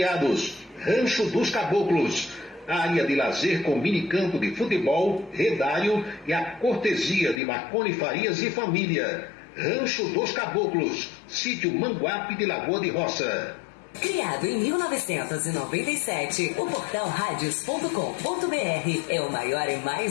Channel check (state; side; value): drops out; right; at 7.4 s